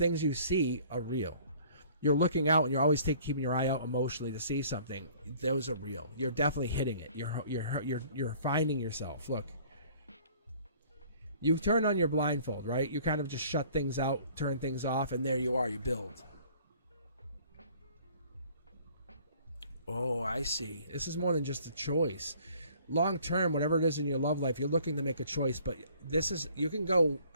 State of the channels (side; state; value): both; inverted; correlation -0.54